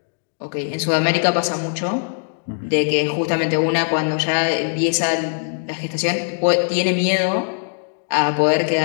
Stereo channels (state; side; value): silent; right; digital silence